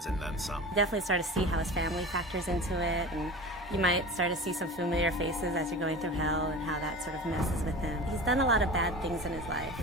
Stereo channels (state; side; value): normal; both; correlation 0.34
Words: and then some. Definitely start to see how his family factors into it, and you might start to see some familiar faces as you're going through hell and how that sort of messes with him. He's done a lot of bad things in his life.